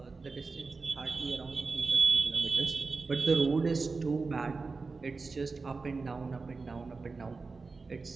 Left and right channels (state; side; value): quieter; left; 4.2 dB